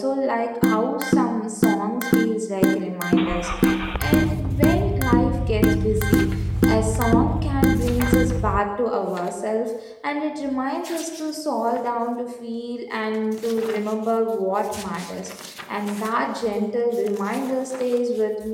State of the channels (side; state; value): both; identical; correlation 1.00